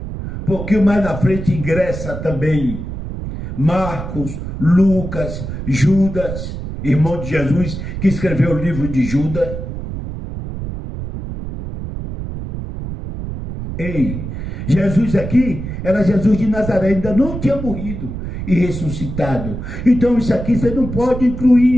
pouquinho mais na frente ingressa também Marcos, Lucas, Judas, irmão de Jesus, que escreveu o livro de Judas. Ei, Jesus aqui era Jesus de Nazaré, ainda não tinha morrido e ressuscitado. Então isso aqui você não pode incluir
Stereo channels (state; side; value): noise; right; rumble, 7 dB below the sound